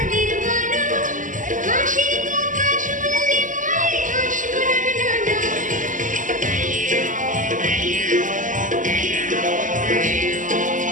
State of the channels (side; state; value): left; late; 0.38 ms